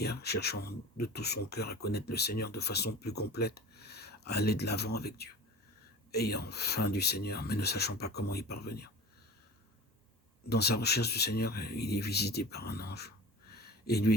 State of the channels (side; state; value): both; normal; correlation 0.37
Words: cherchant de tout son cœur à connaître le Seigneur de façon plus complète, à aller de l'avant avec Dieu, ayant faim du Seigneur, mais ne sachant pas comment y parvenir. Dans sa recherche du Seigneur, il est visité par un ange et